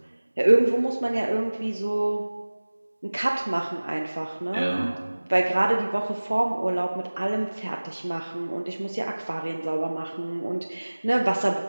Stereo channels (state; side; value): inverted; both; correlation -1.00